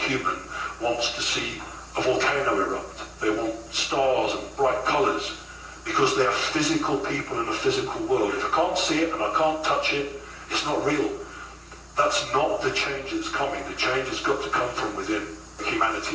wants to see a volcano erupt. They want stars and bright colours because they are physical people in a physical world. If I can't see it and I can't touch it, it's not real. That's not the change that's coming. The change has got to come from within. Humanity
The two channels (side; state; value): both; identical; correlation 1.00